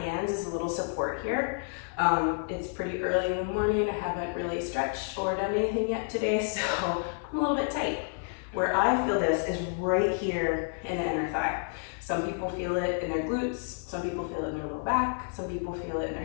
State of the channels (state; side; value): silent; right; 58 dB below the other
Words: as a little support here. It's pretty early in the morning. I haven't really stretched or done anything yet today, so I'm a little bit tight. Where I feel this is right here in the inner thigh. Some people feel it in their glutes, some people feel it in their low back, some people feel it in their